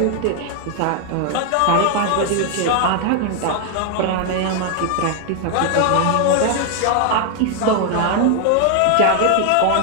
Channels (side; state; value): both; different; correlation 0.01